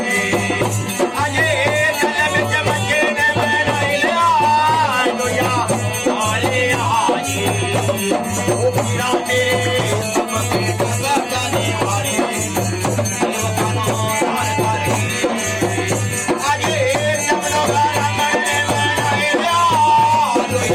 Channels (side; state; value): both; identical; correlation 1.00